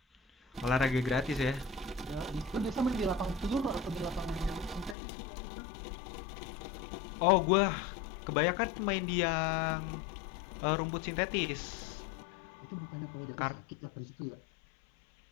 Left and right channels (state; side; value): drops out; right; at 5.0 s